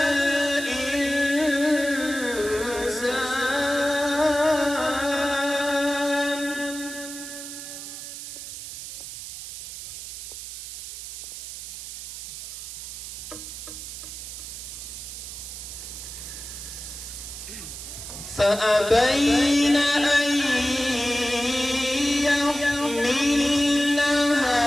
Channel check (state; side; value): noise; right; hiss, 10 dB below the sound